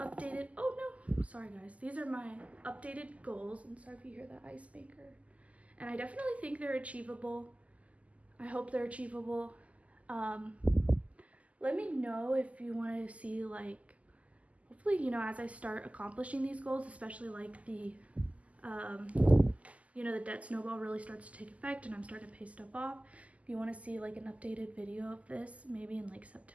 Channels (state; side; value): late; left; 0.070 ms